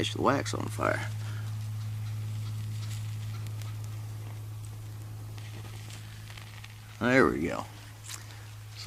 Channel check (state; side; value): identical; both; correlation 1.00